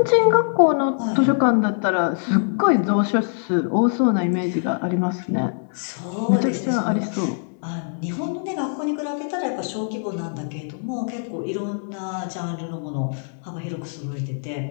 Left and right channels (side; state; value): right; silent; digital silence